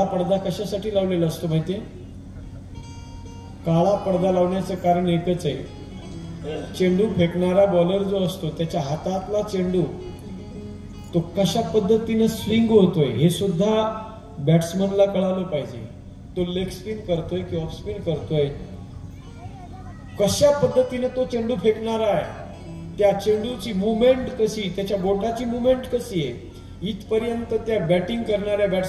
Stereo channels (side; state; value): both; identical; correlation 1.00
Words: पडदा कशासाठी लावलेला असतो माहितीये? काळा पडदा लावण्याचं कारण एकच आहे. चेंडू फेकणारा बॉलर जो असतो त्याच्या हातातला चेंडू तो कशा पद्धतीने स्विंग होतोय हे सुद्धा बॅट्समनला कळालं पाहिजे. तो लेग स्पिन करतोय की ऑफ स्पिन करतोय, कशा पद्धतीने तो चेंडू फेकणारा आहे, त्या चेंडूची मुवमेंट कशी, त्याच्या बोटाची मुवमेंट कशी आहे, इथपर्यंत त्या बॅटिंग करणाऱ्या